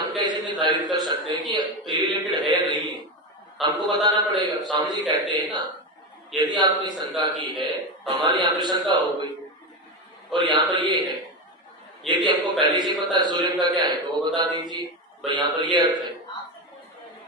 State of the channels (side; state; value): both; normal; correlation 0.16